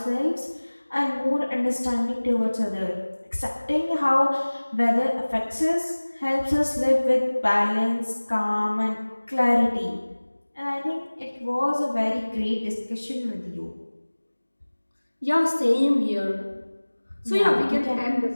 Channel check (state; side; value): inverted; both; correlation -1.00